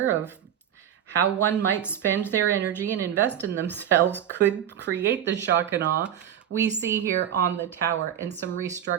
of how one might spend their energy and invest in themselves could create the shock and awe we see here on the Tower, and some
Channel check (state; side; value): quieter; left; 9.9 dB